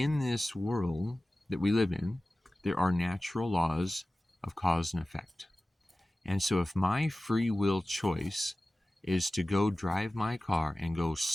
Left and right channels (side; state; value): both; normal; correlation 0.96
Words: this world that we live in, there are natural laws of cause and effect. And so if my free will choice is to go drive my car and go